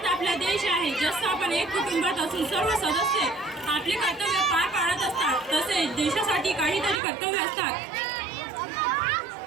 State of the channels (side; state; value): left; drops out; at 7.0 s